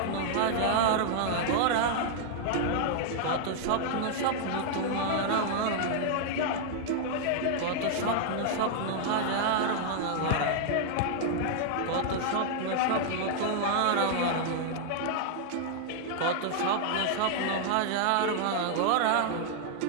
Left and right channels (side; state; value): both; different; correlation -0.01